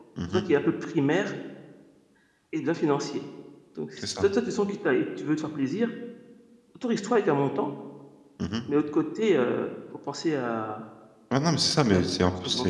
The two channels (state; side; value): identical; both; correlation 1.00